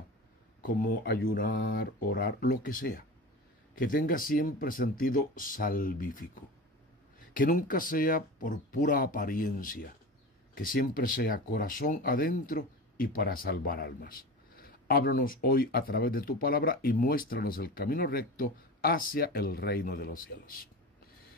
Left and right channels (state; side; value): normal; both; correlation 0.30